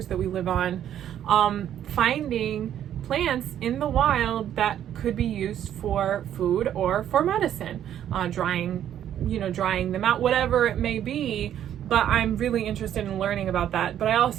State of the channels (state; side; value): quieter; left; 10.6 dB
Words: that we live on, finding plants in the wild that could be used for food or for medicine, drying them out, whatever it may be. But I'm really interested in learning about that. But I